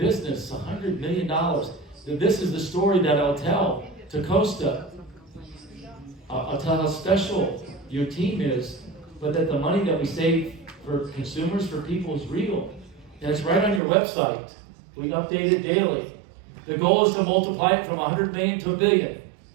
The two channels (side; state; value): left; drops out; at 13.8 s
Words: $100 million. This is the story that I'll tell to Costa. I'll tell how special your team is, but that the money that we save for consumers, for people, is real. And it's right on your website. We update it daily. The goal is to multiply it from 100 million to 1 billion.